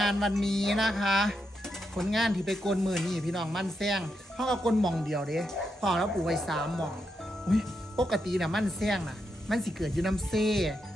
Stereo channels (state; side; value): normal; both; correlation 0.83